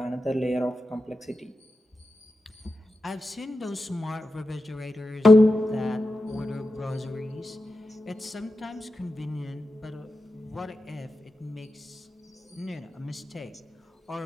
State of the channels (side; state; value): both; normal; correlation 0.90